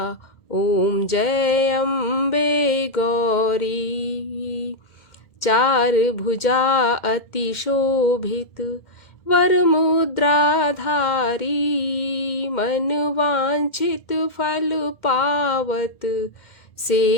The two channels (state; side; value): late; right; 2.1 ms